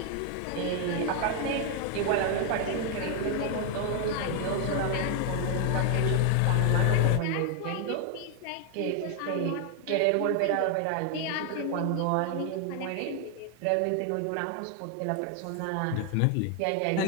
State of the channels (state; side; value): different; both; correlation 0.00